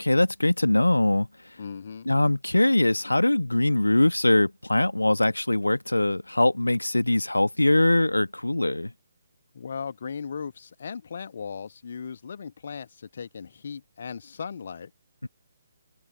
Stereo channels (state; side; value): inverted; both; correlation -1.00